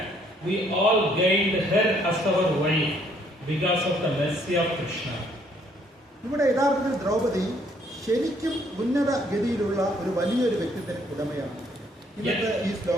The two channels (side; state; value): both; normal; correlation 0.66